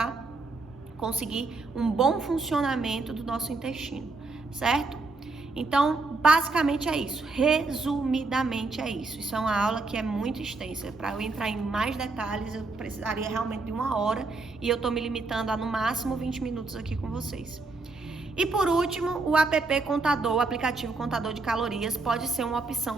conseguir um bom funcionamento do nosso intestino, certo? Então, basicamente é isso. Resumidamente é isso. Isso é uma aula que é muito extensa. Para eu entrar em mais detalhes, eu precisaria realmente de 1 hora e eu estou me limitando a no máximo 20 minutos aqui com vocês. E por último, o app Contador, o aplicativo Contador de Calorias, pode ser uma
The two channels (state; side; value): quieter; left; 3.6 dB